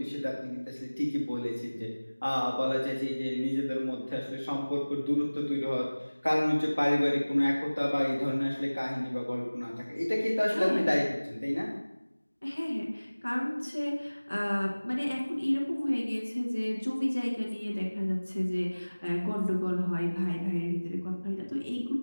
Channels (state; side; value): inverted; both; correlation -1.00